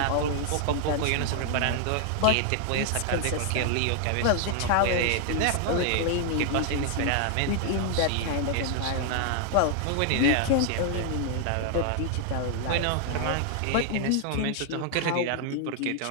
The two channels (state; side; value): different; both; correlation 0.00